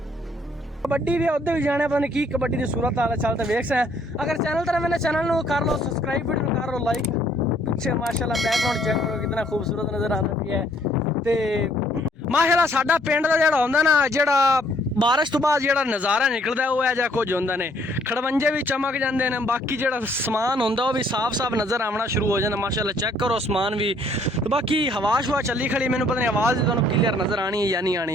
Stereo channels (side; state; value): both; normal; correlation 0.64